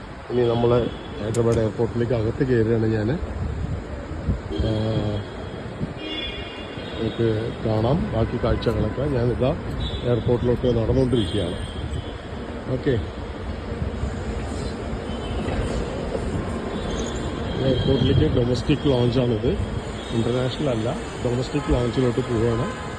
ഇനി നമ്മൾ ഹൈദരാബാദ് എയർപോർട്ടിലേക്ക് അകത്ത് കയറുകയാണ്. ഞാൻ നമുക്ക് കാണാം ബാക്കി കാഴ്ചകളൊക്കെ. ഞാനിതാ എയർപോർട്ടിലോട്ട് നടന്നുകൊണ്ടിരിക്കുകയാണ്. ഓക്കെ, എയർപോർട്ടിലേക്ക് ഡൊമസ്റ്റിക് ലോഞ്ചാണിത്, ഇൻ്റർനാഷണൽ അല്ല. ഡൊമസ്റ്റിക് ലോഞ്ചിലോട്ട് പോവുകയാണ്.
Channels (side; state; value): both; identical; correlation 1.00